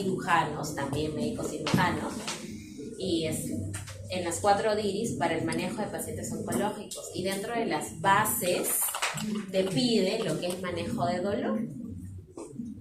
también médicos cirujanos, y en las 4 DIRIs para el manejo de pacientes oncológicos. Y dentro de las bases te pide lo que es manejo de dolor.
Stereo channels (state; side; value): identical; both; correlation 1.00